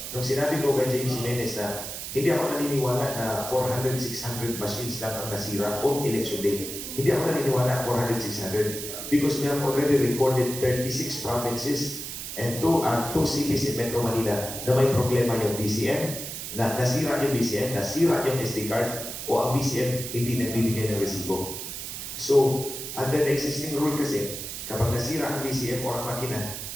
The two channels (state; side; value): noise; right; hiss, 7 dB below the sound